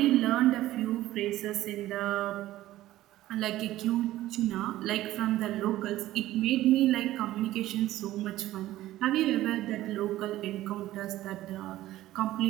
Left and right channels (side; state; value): left; quieter; 15.1 dB